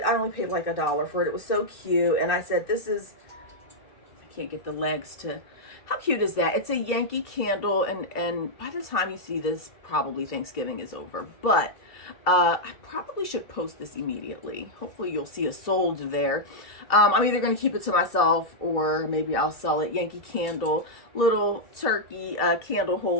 I only paid like $1 for it. It was so cute, and I said, this is, I can't get the legs to, how cute is that? It's a Yankee candle, and by the time you see this, probably Thanksgiving is over, but I probably should post this immediately. Hopefully you'll see a sold there. I'm either going to keep it to myself, or maybe I'll sell it. Yankee candle, little turkey candle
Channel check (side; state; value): right; late; 2.9 ms